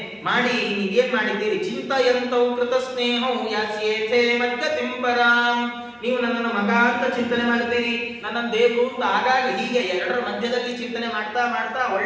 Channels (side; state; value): both; identical; correlation 1.00